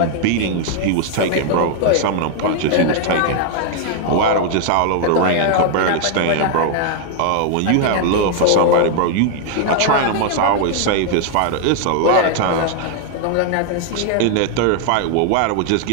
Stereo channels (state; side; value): different; both; correlation 0.00